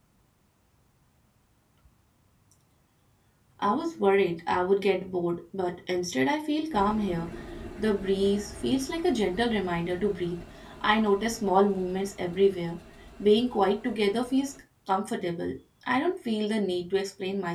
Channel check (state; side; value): identical; both; correlation 1.00